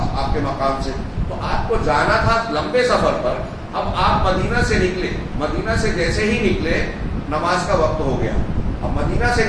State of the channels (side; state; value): both; identical; correlation 1.00